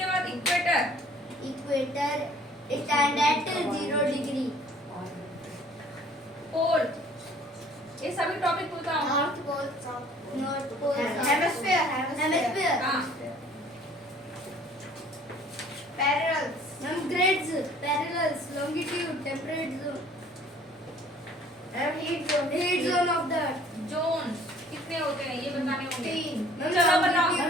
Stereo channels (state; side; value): normal; both; correlation 0.54